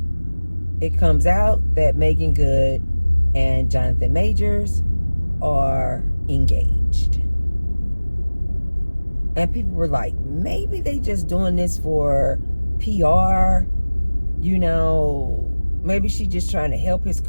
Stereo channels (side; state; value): both; inverted; correlation -1.00